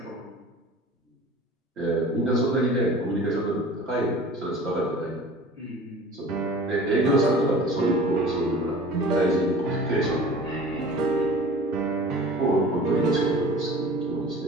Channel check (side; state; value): both; normal; correlation 0.43